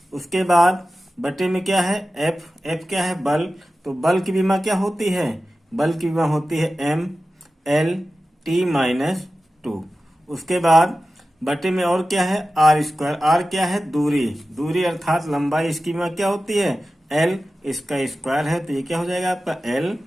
उसके बाद बटे में क्या है F क्या है, बल, तो बल की विमा क्या होती है, बल की विमा होती है MLT-2। उसके बाद बटे में और क्या है R स्क्वायर, R क्या है, दूरी अर्थात लंबाई, इसकी विमा क्या होती है L, इसका स्क्वायर है, तो ये क्या हो जाएगा आपका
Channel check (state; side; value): normal; both; correlation 0.94